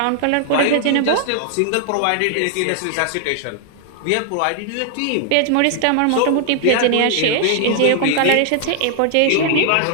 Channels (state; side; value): different; both; correlation 0.00